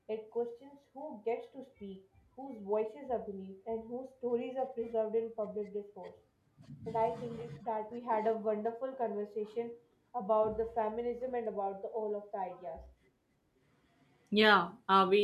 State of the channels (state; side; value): identical; both; correlation 1.00